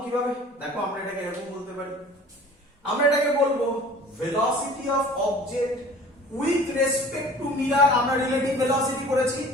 কিভাবে? দেখো আমরা এটাকে এরকম বলতে পারি, আমরা এটাকে বলবো velocity of object with respect two mirror. আমরা রিলেটিভ ভেলোসিটি করেছি,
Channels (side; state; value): both; normal; correlation 0.46